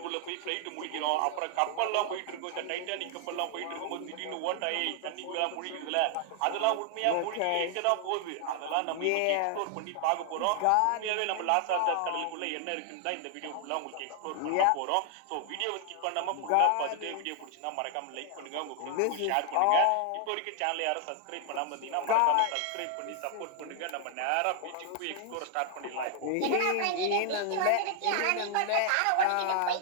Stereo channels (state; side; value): different; both; correlation 0.00